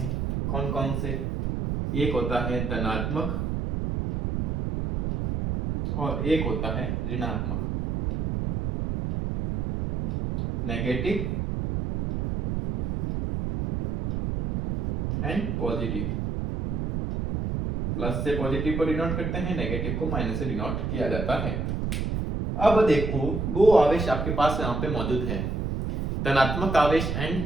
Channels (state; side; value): noise; right; rumble, 1 dB below the sound